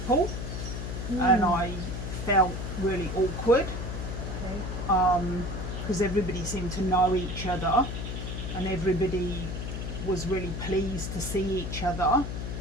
and Hmm. I felt really awkward Okay. because everybody seemed to know each other and everybody was really pleased to see each other.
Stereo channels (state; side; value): noise; left; hum, 5 dB below the sound